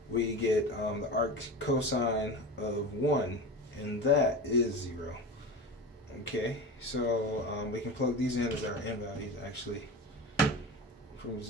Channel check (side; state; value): both; normal; correlation 0.28